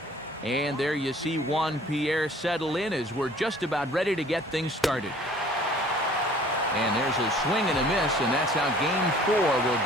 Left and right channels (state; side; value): normal; both; correlation 0.52